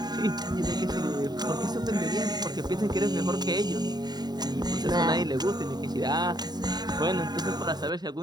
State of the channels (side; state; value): left; late; 0.20 ms